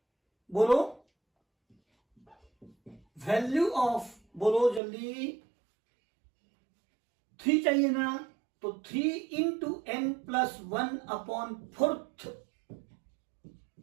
बोलो, वैल्यू ऑफ, बोलो जल्दी, 3 चाहिए ना, तो 3 इंटू n प्लस 1/4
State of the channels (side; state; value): left; drops out; at 4.8 s